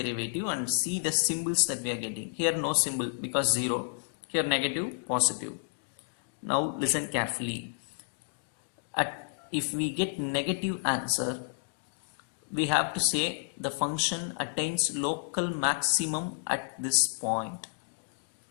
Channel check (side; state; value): right; silent; digital silence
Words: and see the symbols that we are getting. Here no symbol because 0. Here negative, positive. Now listen carefully. If we get negative answer, we have to say the function attains local maximum at this point.